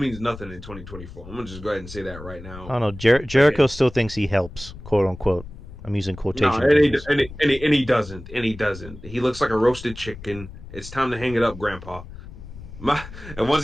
nothing in 2024. I'm gonna just go ahead and say that right now. I don't know. Jericho still thinks he helps, quote unquote. I'm using quotation. No, and he doesn't. He looks like a roasted chicken, It's time to hang it up, Grandpa. And once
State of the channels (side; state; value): left; noise; rumble, 15 dB below the sound